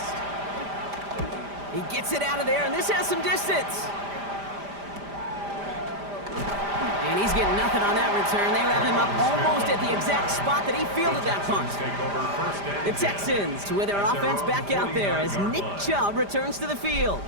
He gets it out of there, and this has some distance. And he's getting nothing on that return. They wrap him up almost at the exact spot that he fielded that punt. The Texans with their offense back out there as Nick Chubb returns to the field.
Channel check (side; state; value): left; late; 5.0 ms